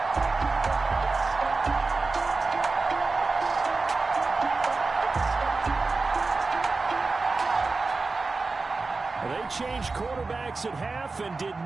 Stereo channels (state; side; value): quieter; left; 3.9 dB